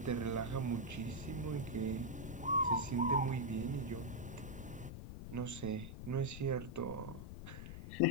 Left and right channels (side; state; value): left; noise; rumble, 9 dB below the sound